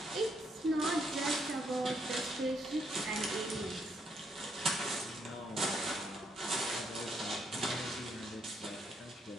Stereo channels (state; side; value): normal; both; correlation 0.74